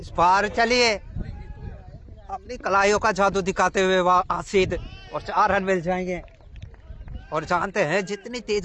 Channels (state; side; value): identical; both; correlation 1.00